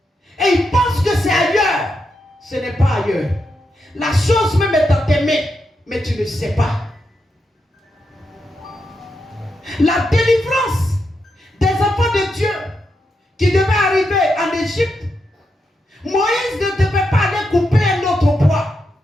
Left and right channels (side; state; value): both; normal; correlation 0.84